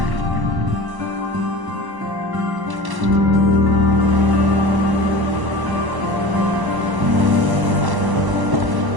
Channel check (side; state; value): left; late; 1.1 ms